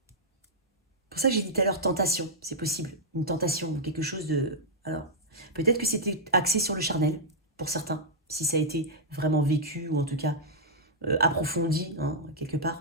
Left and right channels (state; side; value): normal; both; correlation -0.07